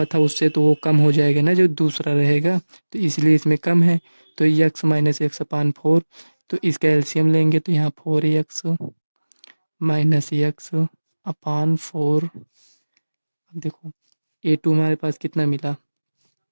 था उससे तो वो कम हो जाएगा ना जो दूसरा रहेगा, तो इसलिए इसमें कम है। तो यक्स माइनस यक्स अपान 4, तो इसका एलसीएम लेंगे तो यहाँ 4x माइनस यक्स अपान 4। अब देखो A2 हमारे पास कितना मिला,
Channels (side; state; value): both; inverted; correlation -1.00